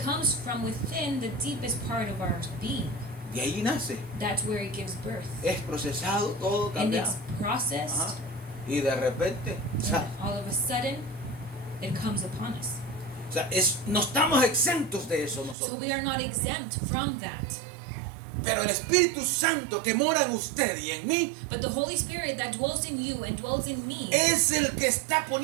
comes from within the deepest part of our being. De ahí nace. That's where it gives birth. Es procesado, todo And cambiado. it's processed, Ajá. Y de repente, and all of a sudden, it comes upon us. no estamos exentos de eso So nosotros. we are not exempt from that. Pero el Espíritu Santo que mora en usted y en mí But the Holy Spirit that dwells in you and dwells in me, es el que está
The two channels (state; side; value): drops out; left; at 15.6 s